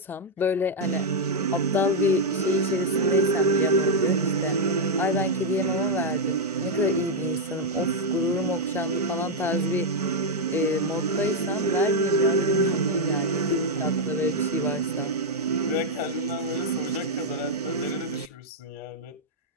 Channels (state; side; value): normal; both; correlation -0.01